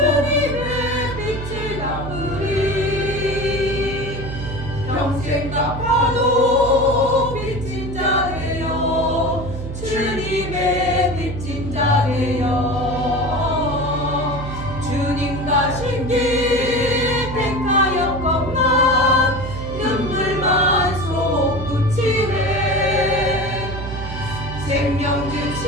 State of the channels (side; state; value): right; noise; hum, 7 dB below the sound